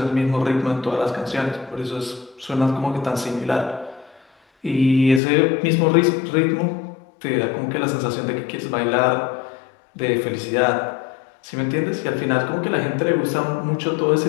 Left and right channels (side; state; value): right; drops out; at 5.2 s